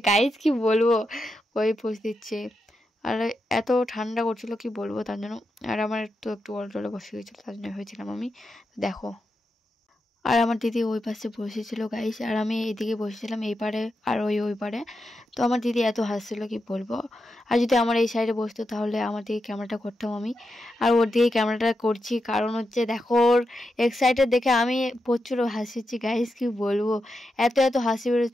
গাইস, কি বলবো ওই পোজ দিচ্ছে। আর এত ঠান্ডা করছিল কি বলবো, তার জন্য। আর আমার একটু অলটলে বসে গেছিলো, তার জন্য হয়েছিলাম আমি। দেখো আর আমার দিদি ওই পাশে বসেছিল গাইস, আর আমি এইদিকে বসেছিলাম এই পারে, আর ওই পারে। তো আমার দিদি এত হাসছিল কি বলবো। আর যদি আমার এই সাইডে বসতো তাহলে আমার দিকে ক্যামেরাটা করতাম আমি, আর ওর দিকে ক্যামেরাটা করছি, কারণ হচ্ছে দেখো ওর এক্সাইটেড দেখে আমি প্রচুর হাসিছি গাইস, কি বলবো এত এত হাসি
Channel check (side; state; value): both; normal; correlation 0.87